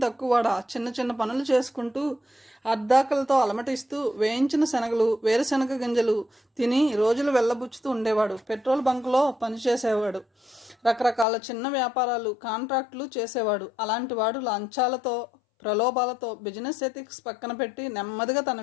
తక్కువడా? చిన్న చిన్న పనులు చేసుకుంటూ అర్ధాకలతో అలమటిస్తూ వేయించిన శనగలు, వేరుశనగ గింజలు తిని రోజులు వెళ్ళబుచ్చుతూ ఉండేవాడు. పెట్రోల్ బంకులో పనిచేసేవాడు. రకరకాల చిన్న వ్యాపారాలు, కాంట్రాక్టులు చేసేవాడు. అలాంటి వాడు లంచాలతో ప్రలోభాలతో బిజినెస్ ఎథిక్స్ పక్కన పెట్టి నెమ్మదిగా తన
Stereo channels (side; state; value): right; drops out; at 11.2 s